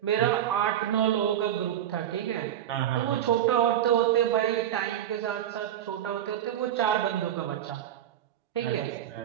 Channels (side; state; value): left; quieter; 11.0 dB